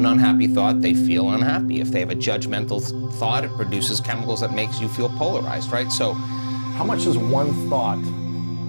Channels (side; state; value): both; inverted; correlation -1.00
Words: unhappy thought, they feel unhappy. If they have a judgmental thought, it produces chemicals that makes you feel polarized, right? So, how much does one thought